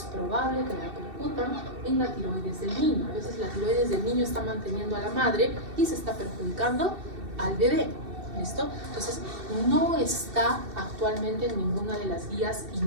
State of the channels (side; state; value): left; late; 2.7 ms